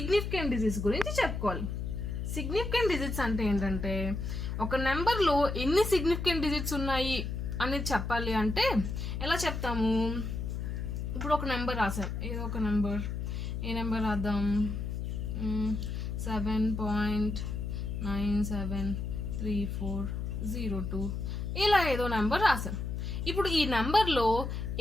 డిజిట్స్ గురించి చెప్పుకోవాలి. సిగ్నిఫికెంట్ డిజిట్స్ అంటే ఏంటంటే ఒక నెంబర్లో ఎన్ని సిగ్నిఫికెంట్ డిజిట్స్ ఉన్నాయి అనేది చెప్పాలి. అంటే ఎలా చెప్తాము? ఇప్పుడు ఒక నెంబర్ రాసాం, ఏదో ఒక నెంబర్. ఏ నెంబర్ రాద్దాం? 7.973402 ఇలా ఏదో నెంబర్ రాసాం. ఇప్పుడు ఈ నెంబర్లో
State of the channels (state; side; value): noise; left; hum, 3 dB below the sound